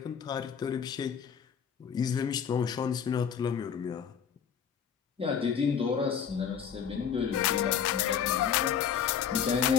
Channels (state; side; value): quieter; right; 7.8 dB